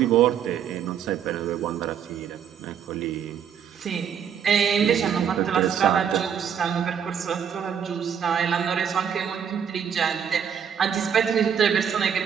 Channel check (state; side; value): quieter; left; 8.0 dB